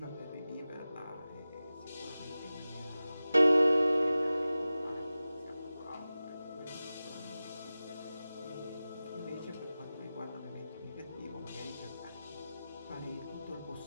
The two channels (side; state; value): both; inverted; correlation -0.95